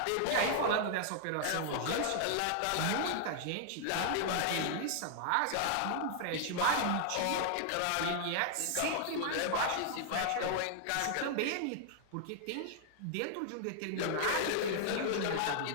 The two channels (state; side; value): different; both; correlation 0.00